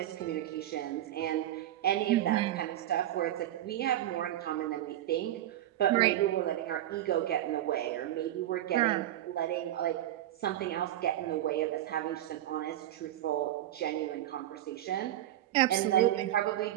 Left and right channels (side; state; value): left; quieter; 13.3 dB